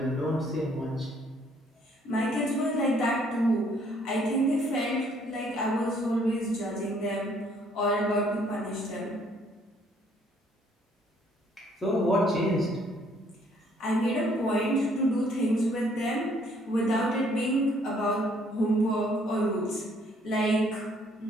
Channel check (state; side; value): normal; both; correlation 0.64